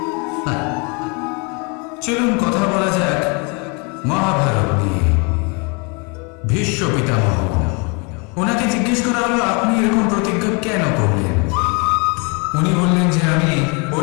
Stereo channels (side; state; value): right; quieter; 32.3 dB